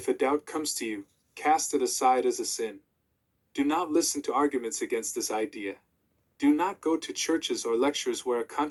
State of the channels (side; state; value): both; identical; correlation 1.00